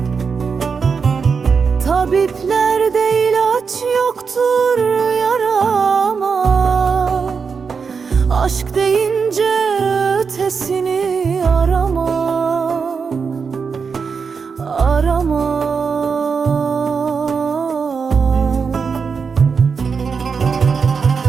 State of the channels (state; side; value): quieter; left; 5.6 dB